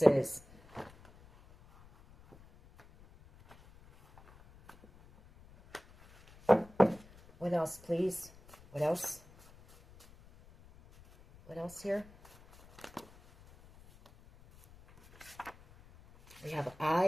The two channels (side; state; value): left; noise; rumble, 24 dB below the sound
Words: is. What else, please? What else? What else here? We have